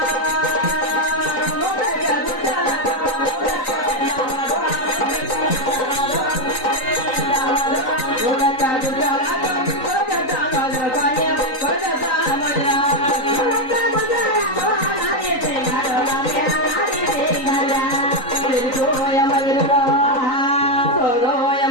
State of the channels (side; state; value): right; late; 3.9 ms